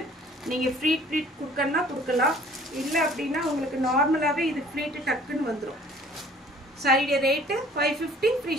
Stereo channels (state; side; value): normal; both; correlation 0.53